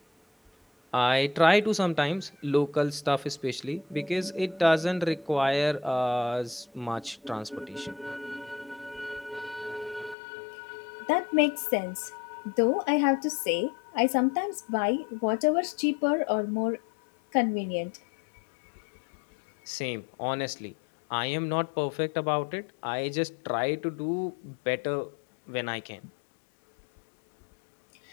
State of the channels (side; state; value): right; drops out; at 10.2 s